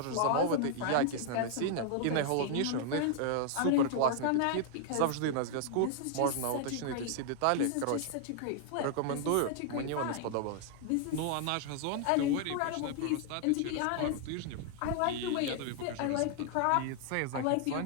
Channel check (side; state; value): both; different; correlation 0.00